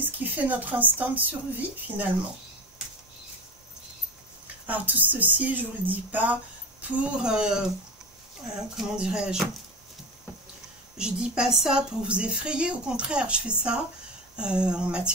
fait notre instinct de survie finalement. Alors tout ceci, je ne vous le dis pas pour, comment dirais-je, je dis pas ça pour vous effrayer, au contraire, je fais ça en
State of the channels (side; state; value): both; normal; correlation 0.25